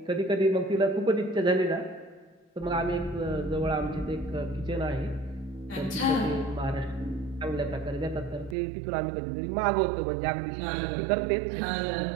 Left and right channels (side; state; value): left; drops out; at 8.6 s